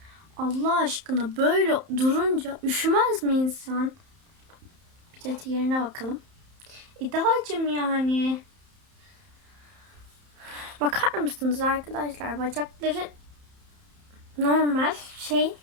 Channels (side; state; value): left; late; 31 ms